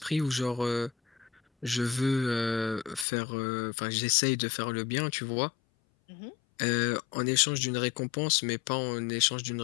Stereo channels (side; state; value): right; drops out; at 3.1 s